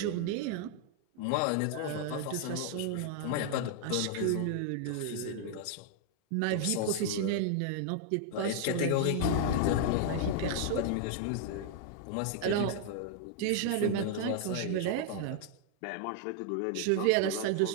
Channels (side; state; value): both; different; correlation 0.00